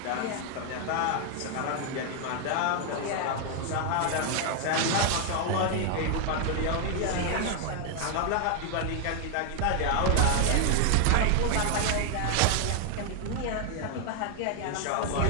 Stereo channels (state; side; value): different; both; correlation 0.00